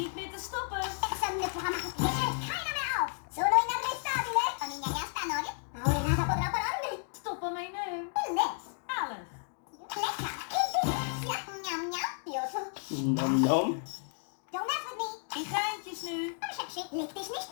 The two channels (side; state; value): right; silent; 56 dB below the other